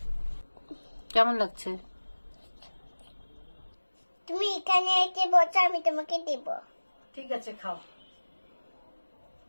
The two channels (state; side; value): inverted; both; correlation -1.00